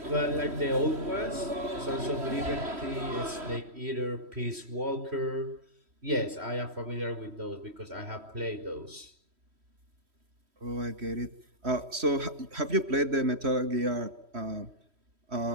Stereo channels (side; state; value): left; late; 3.1 ms